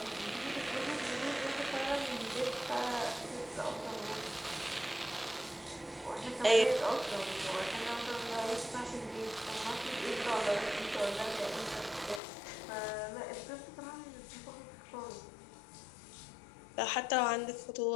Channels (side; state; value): right; drops out; at 12.2 s